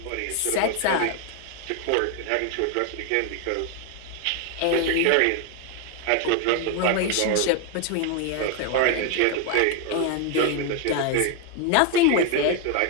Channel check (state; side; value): different; both; correlation 0.01